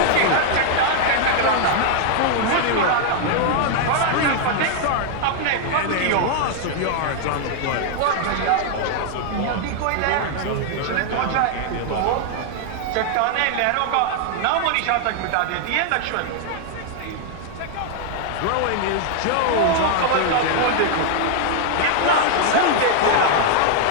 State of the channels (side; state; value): both; different; correlation 0.00